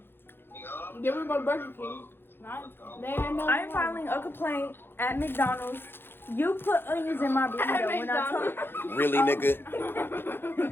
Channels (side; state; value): right; late; 0.10 ms